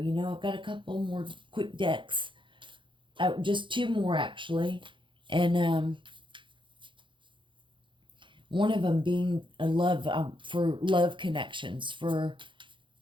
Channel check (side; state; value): left; late; 0.24 ms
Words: You know, I've got a couple more quick decks. Just 2 more actually. And one of them being a love... for love connections. For